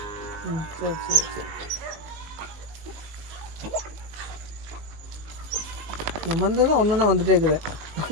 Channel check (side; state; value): left; late; 19 ms